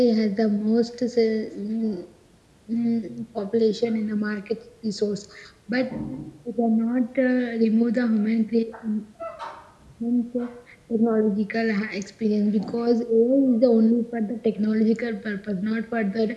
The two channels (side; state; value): both; identical; correlation 1.00